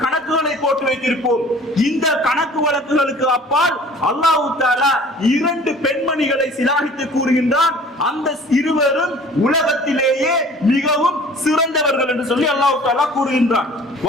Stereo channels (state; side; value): normal; both; correlation 0.48